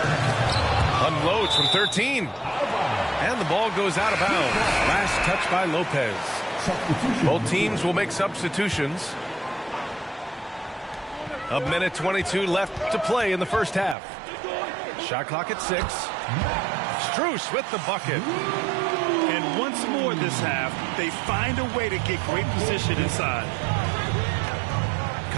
Unloads from 13. And the ball goes out of bounds. Last touch by Lopez. Both teams will make substitutions. A minute 22 left to play in the first half. Shot clock at 6. Strus with the bucket. And once more this half, they find a way to get great position inside.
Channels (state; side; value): drops out; left; at 14.0 s